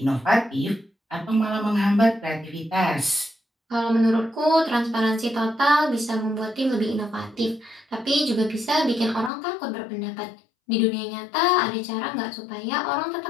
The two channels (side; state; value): right; drops out; at 9.3 s